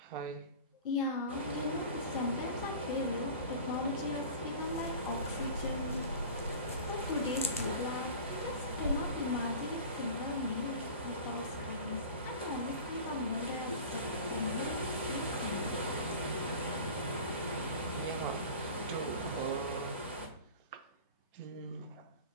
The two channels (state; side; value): inverted; both; correlation -0.37